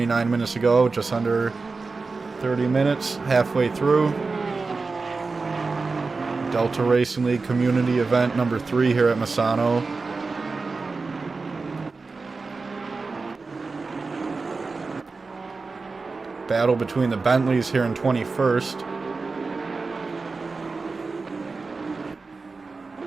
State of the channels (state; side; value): quieter; left; 4.1 dB